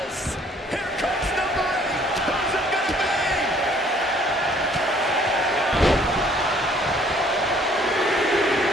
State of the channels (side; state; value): both; normal; correlation 0.59